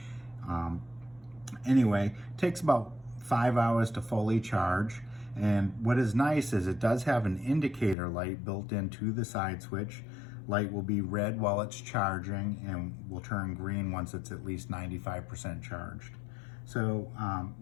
Anyway, it takes about 5 hours to fully charge. And what is nice is it does have an indicator light built into the side switch. Light will be red while it's charging and will turn green once it's at least 95% charged. So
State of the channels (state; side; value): drops out; right; at 8.0 s